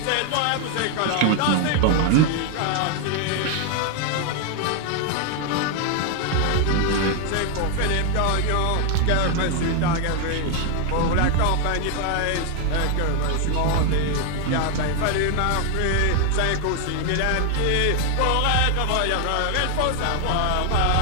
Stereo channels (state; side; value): different; both; correlation 0.00